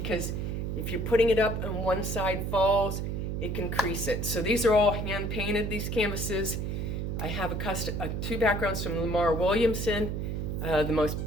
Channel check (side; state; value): right; noise; hum, 2 dB below the sound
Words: if you're putting it up and one side falls, it can crease it. So these are all hand painted, these canvases. I have 2 backgrounds from Lamar Williamson, the most